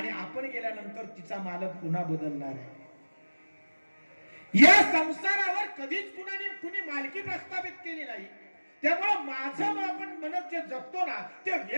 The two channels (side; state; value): both; inverted; correlation -1.00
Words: आपण गेल्यानंतर तिचा मालक पुन्हा बदलणार आहे. या संसारावर कधीच कुणी मालकी प्रस्थापित केली नाही. त्यामुळे माझं आपण म्हणत जे जगतो ना ते